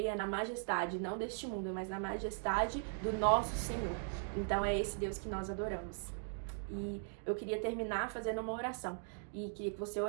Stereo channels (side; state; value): left; silent; digital silence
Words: na majestade, não deste mundo, mas na majestade do nosso Senhor. Então é esse Deus que nós adoramos. E eu queria terminar fazendo uma oração e queria que você